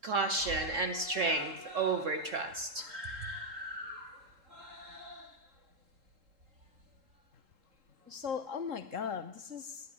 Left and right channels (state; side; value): late; left; 3.7 ms